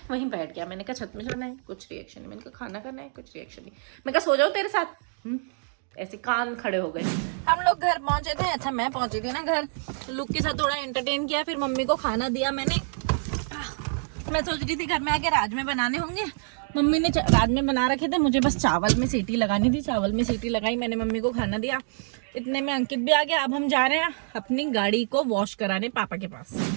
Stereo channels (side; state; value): left; silent; 60 dB below the other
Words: वहीं बैठ गया। मैंने कहा छत में जाना है, कुछ रिएक्शन नहीं। मैंने कहा खाना करना है, कुछ रिएक्शन नहीं। मैं कहा सो जाओ तेरे साथ, ऐसे कान खड़े हो गए। हम लोग घर पहुंचे थे। अच्छा मैं पहुंची थी ना घर, लुक के साथ थोड़ा एंटरटेन किया, फिर मम्मी को खाना दिया मैंने। मैं सोच रही थी घर में आके राजमे बनाने होंगे, मम्मी ने राजमे बना रखे थे, मुझे बस चावल में सीटी लगानी थी। चावल में सीटी लगाई, मैंने मम्मी को खाना दिया, इतने में अंकित भी आ गया। अब हम जा रहे हैं अपनी गाड़ी को वॉश कराने पापा के पास।